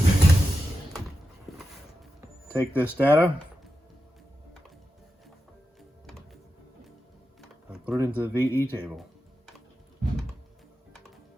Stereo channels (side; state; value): both; normal; correlation 0.90